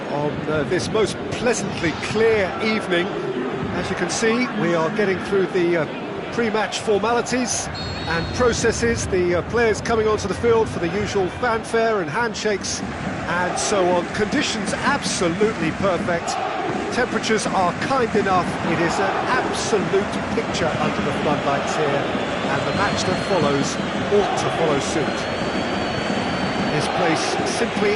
on this most pleasantly clear evening. As you can see, we are getting through the pre-match formalities and processes, the players coming onto the field for the usual fanfare and handshakes and so on. Conditions absolutely perfect. Temperatures are kind enough. It is an absolute picture under the floodlights here, and the match that follows ought to follow suit. This place simply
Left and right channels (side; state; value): both; identical; correlation 1.00